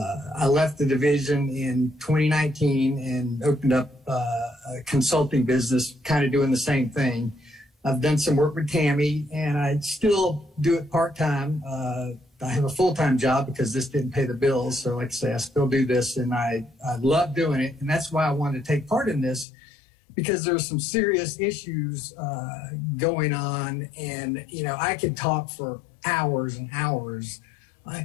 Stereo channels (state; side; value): drops out; right; at 19.5 s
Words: left the division in 2019 and opened up a consulting business, kind of doing the same thing. I've done some work with Tammy, and I still do it part-time. I have a full-time job because this didn't pay the bills. So like I say, I still do this, and I love doing it. And that's why I wanted to take part in this, because there are some serious issues going on. And, you know, I could talk for hours and hours.